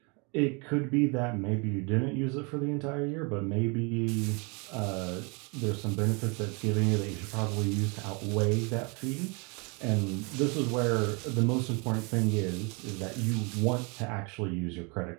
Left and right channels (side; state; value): left; quieter; 31.8 dB